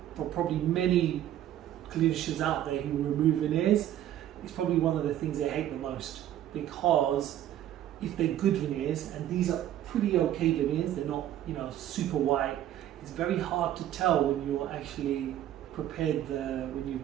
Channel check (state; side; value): quieter; left; 12.0 dB